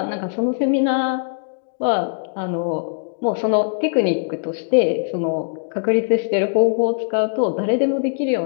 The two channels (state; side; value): silent; right; digital silence